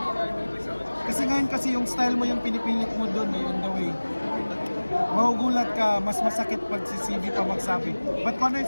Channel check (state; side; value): inverted; both; correlation -1.00